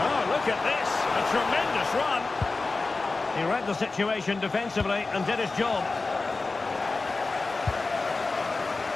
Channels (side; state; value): right; quieter; 3.7 dB